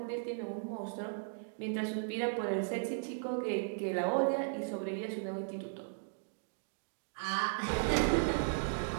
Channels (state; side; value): silent; left; digital silence